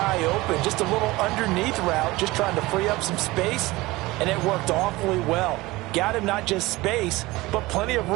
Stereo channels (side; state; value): left; quieter; 20.3 dB